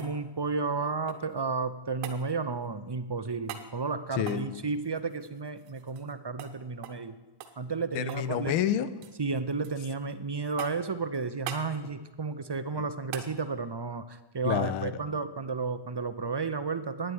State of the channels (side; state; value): left; late; 1.2 ms